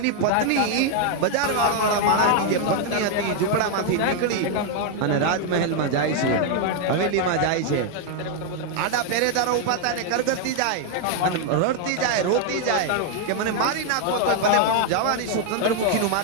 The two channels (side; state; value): both; different; correlation 0.00